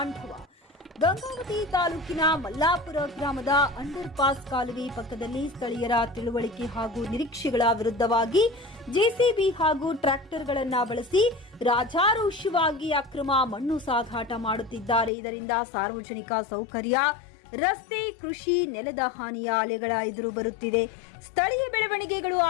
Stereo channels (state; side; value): drops out; right; at 15.1 s